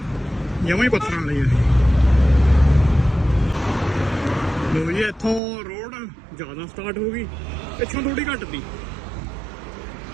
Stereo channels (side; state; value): left; drops out; at 5.4 s